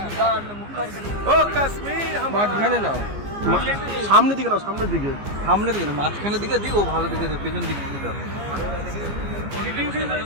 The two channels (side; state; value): left; late; 15 ms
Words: मुखर्जी। ओ कश्मीर মাঝখানে নাও, সামনের দিকে নাও, সামনের দিকে। সামনের দিকে না, মাঝখানের দিকে দিক, ও ভালো দিকে দিক, পেছন দিক দিকে দাও।